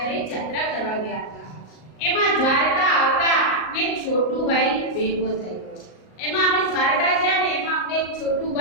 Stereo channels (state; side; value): late; right; 38 ms